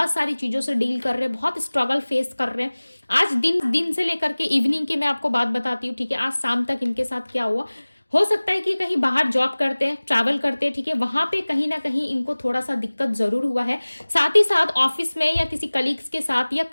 सारी चीजों से डील कर रहे हैं, बहुत स्ट्रगल फेस कर रहे हैं। आज दिन से लेकर के इवनिंग की मैं आपको बात बताती हूँ, ठीक है। आज शाम तक इनके साथ क्या हुआ, हो सकता है कि कहीं बाहर जॉब करते हैं, ट्रैवल करते हैं, ठीक है, वहां पे कहीं ना कहीं इनको थोड़ा सा दिक्कत जरूर हुआ है। साथ ही साथ ऑफिस में या किसी कलीग्स के साथ या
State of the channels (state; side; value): inverted; both; correlation -1.00